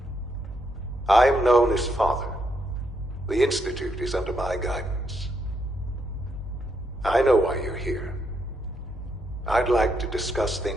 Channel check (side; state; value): both; normal; correlation 0.77